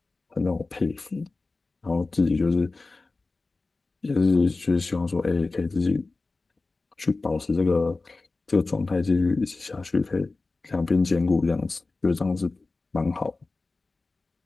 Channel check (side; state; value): right; quieter; 3.5 dB